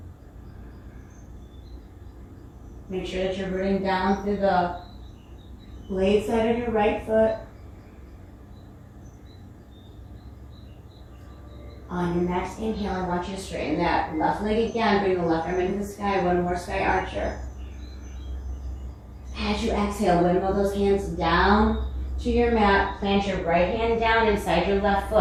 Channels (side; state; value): both; identical; correlation 1.00